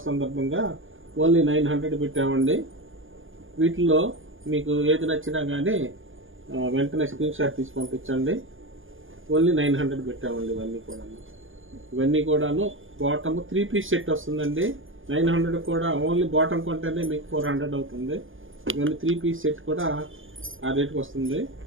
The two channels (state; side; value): late; left; 0.58 ms